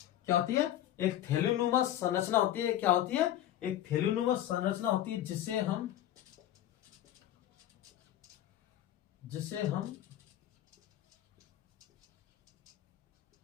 क्या होती है? एक थैलीनुमा संरचना होती है। क्या होती है? एक थैलीनुमा संरचना होती है जिसे हम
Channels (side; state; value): right; quieter; 12.4 dB